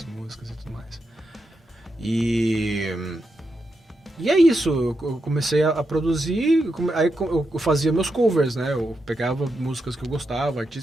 músicas e tudo mais. E é isso, eu comecei a produzir, aí eu fazia meus covers, né? Eu pegava músicas que eu gostava,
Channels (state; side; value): normal; both; correlation 0.85